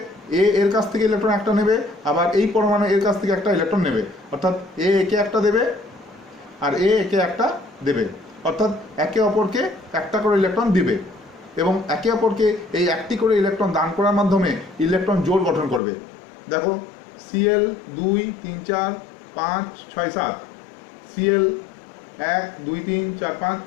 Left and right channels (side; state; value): right; drops out; at 15.8 s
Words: এ এর কাছ থেকে ইলেকট্রন একটা নেবে, আবার এই পরমাণু এর কাছ থেকে একটা ইলেকট্রন নেবে, অর্থাৎ এ একে একটা দেবে আর এ একে একটা দেবে, অর্থাৎ একে অপরকে একটা করে ইলেকট্রন দিবে এবং একে অপরকে এই একটি করে ইলেকট্রন দান করার মাধ্যমে ইলেকট্রন জোড় গঠন করবে। দেখো Cl 2 3 4 5 6 7, Cl 1 2 3 4 5